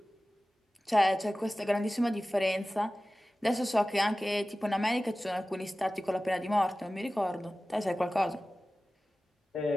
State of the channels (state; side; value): normal; both; correlation 0.96